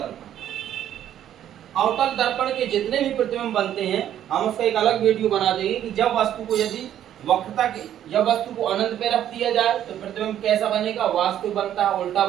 अवतल दर्पण के जितने भी प्रतिबिंब बनते हैं हम उसका एक अलग वीडियो बना देंगे कि जब वस्तु को यदि वक्रता के, जब वस्तु को अनंत पे रख दिया जाए तो प्रतिबिंब कैसा बनेगा, वास्तविक बनता है, उल्टा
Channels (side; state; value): left; quieter; 10.9 dB